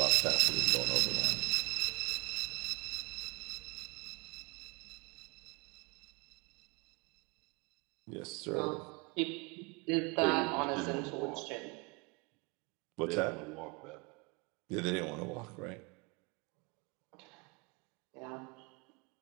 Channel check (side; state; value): left; quieter; 27.0 dB